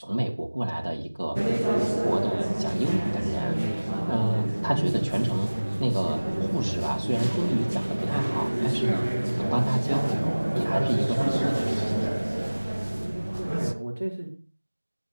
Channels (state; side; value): inverted; both; correlation -1.00